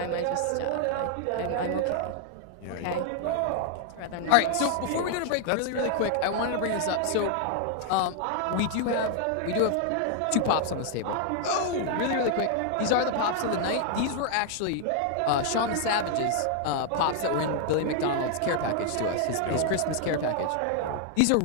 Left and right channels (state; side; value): different; both; correlation 0.00